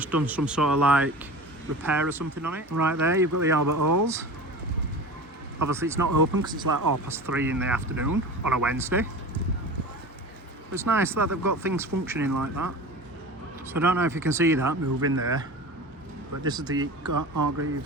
done some sort of like repair or something on it. Right there you've got the Albert Halls. Obviously it's not open because it's like 3:30 in the afternoon on a Wednesday. But it's nice that they've got things functioning like that. So I don't know if you can see that moving there, but this is the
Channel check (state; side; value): normal; both; correlation 0.33